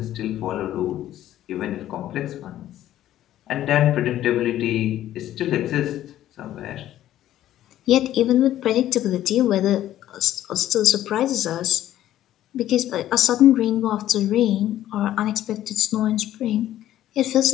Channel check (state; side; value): quieter; right; 12.8 dB